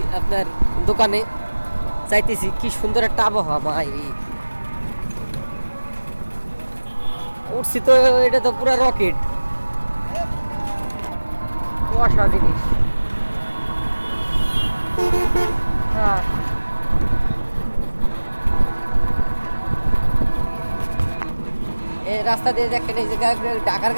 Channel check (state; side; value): inverted; both; correlation -1.00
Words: আপনার দোকানে, চাইতেছি কি সুন্দর একটা আবহাওয়া মাইরি উঠছি তো, এটা তো পুরো রকেট কুয়াশা জিনিস। হ্যাঁ এই রাস্তা দিয়ে দেখেন, এই যে ঢাকার